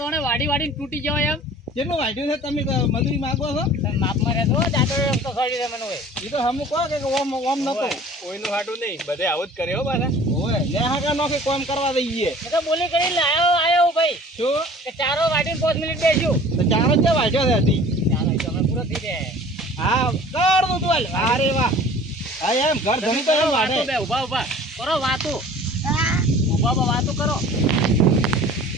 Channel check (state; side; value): normal; both; correlation 0.47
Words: કોણે વાડી વાડીને તૂટી જવાય એમ કેટલું વાઢ્યું છે તમે મજૂરી માંગો છો? તમે માપમાં રહેતો જાતો તો સડી રે મને હોય ઈ તો હમ કહો કે ઓમ ઓમ નતો. કોઈનું હાટું નહીં બધે આવું જ કરે હો પાછા. ઓય ને હાકા નોખે કોમ કરવા દઈએ. મેં તો બોલી કરીને આયો ભાઈ શું કે ચારો વાડીને 5 મિનિટ બેસ્યું તો ચારો જ વાઢ્યો છે હજી. ચાલો એ તો હવે પૂરો થઈ જાય હા કર દઉં તું હાલ. અરે વાહ હા એમ ઘર ધણી તો એમ વાઢે. વાતો બે ઉભા કરો વાતો ઉભા વાતો કરો